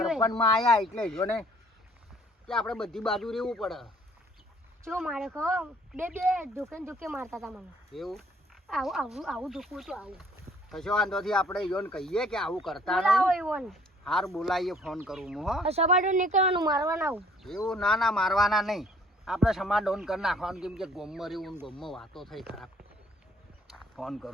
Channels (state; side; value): normal; both; correlation 0.58